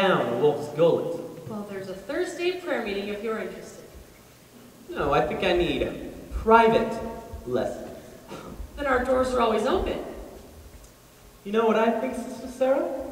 a wolf's gullet. Well, there's a Thursday prayer meeting if you're interested. No, I think I need private lessons. Then our doors are always open. You know what I think, Sister Sarah?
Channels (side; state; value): both; identical; correlation 1.00